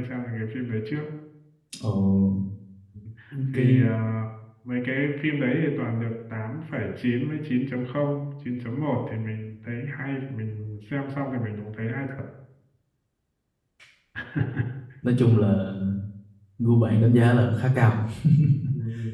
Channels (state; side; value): identical; both; correlation 1.00